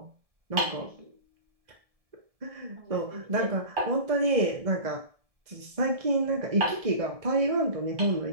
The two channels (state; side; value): late; left; 1.7 ms